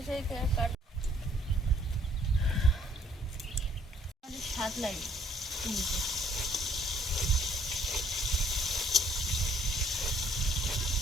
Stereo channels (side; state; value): both; normal; correlation 0.63